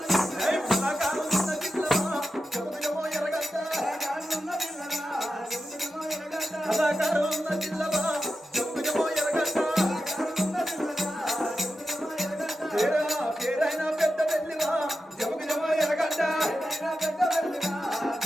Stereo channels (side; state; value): both; normal; correlation 0.90